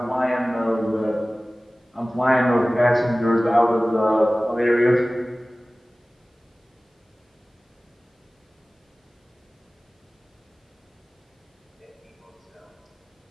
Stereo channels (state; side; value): normal; both; correlation 0.98